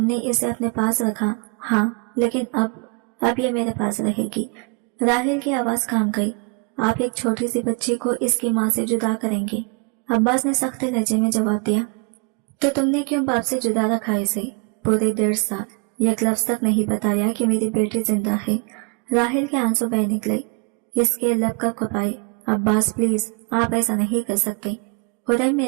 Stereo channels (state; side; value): quieter; left; 34.0 dB